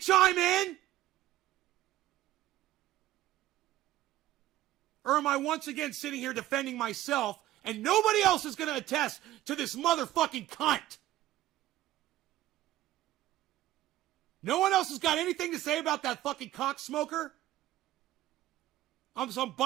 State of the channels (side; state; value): left; quieter; 14.6 dB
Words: in? Or am I once again sitting here defending myself and nobody else is going to attest to this motherfucking cunt? No one else has got anything to say about that fucking cocksmoker? I'm